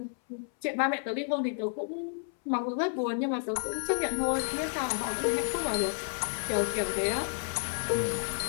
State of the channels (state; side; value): silent; right; 57 dB below the other